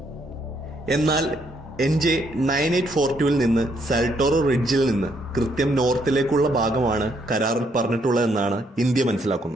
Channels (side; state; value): both; normal; correlation 0.72